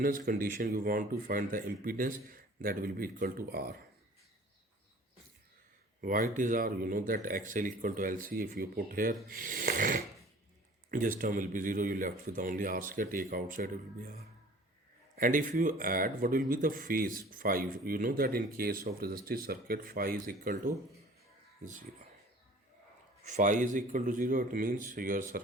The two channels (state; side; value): normal; both; correlation 0.48